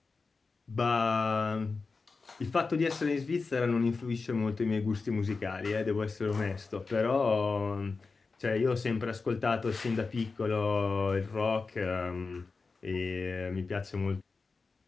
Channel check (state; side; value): quieter; right; 4.3 dB